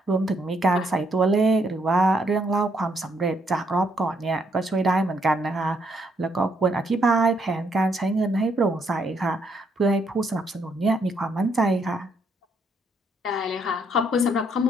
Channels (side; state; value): both; normal; correlation 0.73